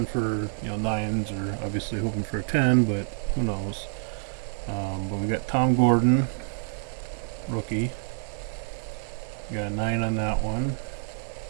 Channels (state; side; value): silent; left; 60 dB below the other